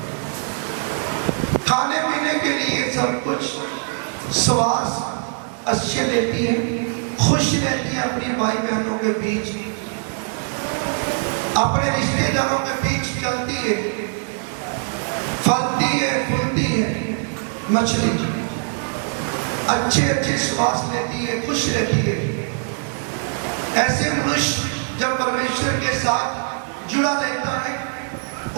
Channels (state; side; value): silent; left; 64 dB below the other